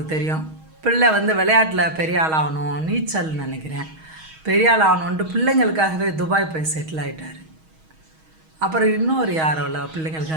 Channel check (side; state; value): left; late; 6.3 ms